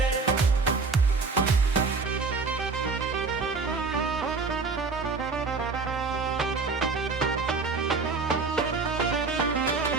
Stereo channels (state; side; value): quieter; left; 4.4 dB